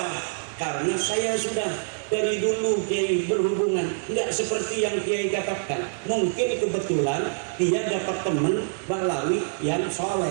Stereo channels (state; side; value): silent; left; digital silence